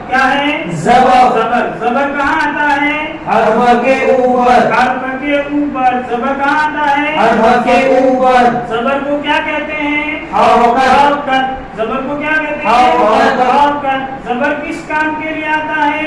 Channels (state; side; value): identical; both; correlation 1.00